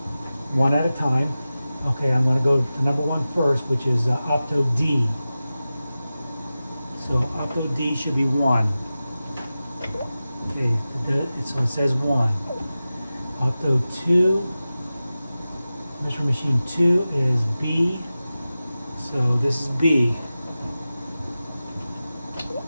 one at a time. Okay, I'm going to go to number one first, which is opto D. So opto D should be 1. Okay, so it says 1. Opto 2, Mystery Machine 2 is B. So this is B.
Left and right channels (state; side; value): inverted; both; correlation -0.95